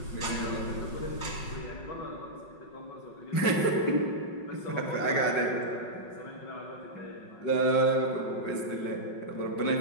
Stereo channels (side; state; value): right; late; 5.4 ms